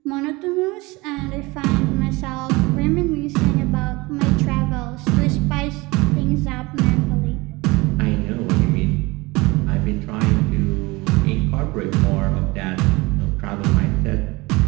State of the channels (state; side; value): quieter; left; 23.3 dB